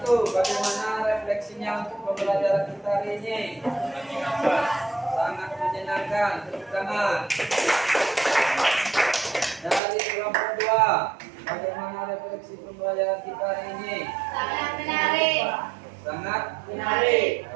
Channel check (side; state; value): left; drops out; at 9.8 s